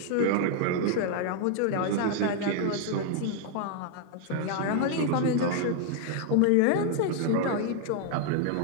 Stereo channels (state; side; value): different; both; correlation 0.00